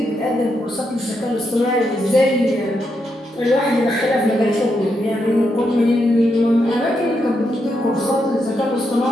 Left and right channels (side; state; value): both; normal; correlation 0.81